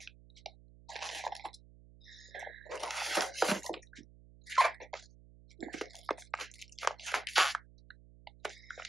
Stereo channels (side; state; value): right; noise; hum, 21 dB below the sound